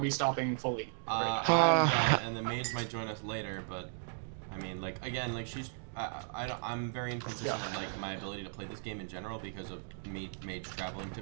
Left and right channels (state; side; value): silent; left; digital silence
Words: we stopping fully? I'm Ah. done, and the mage might join us later, but I mean, like, again, like, she's I'm very inconsistent with like my ability to play this game in general because of mage traveling to